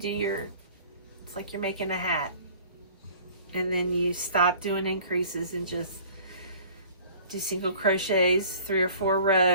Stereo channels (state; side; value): inverted; both; correlation -0.49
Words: your, it's like you're making a hat. And then you stop doing increases and just do single crochets, 3 or 4